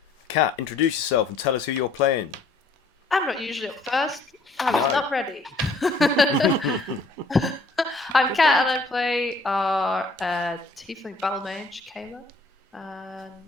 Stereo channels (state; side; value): quieter; right; 3.3 dB